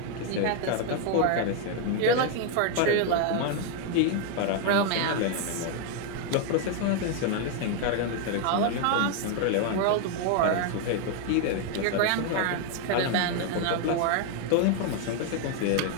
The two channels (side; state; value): both; different; correlation 0.00